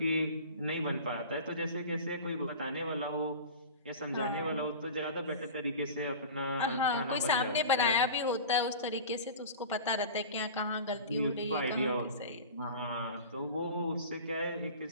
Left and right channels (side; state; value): both; inverted; correlation -0.34